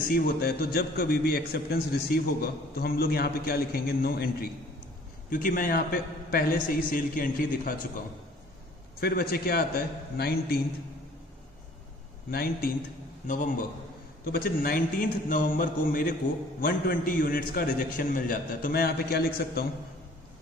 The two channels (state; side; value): normal; both; correlation 0.54